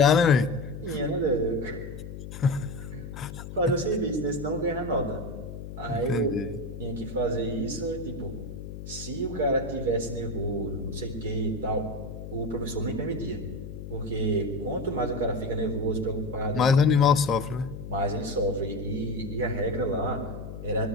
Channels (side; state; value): left; noise; hum, 10 dB below the sound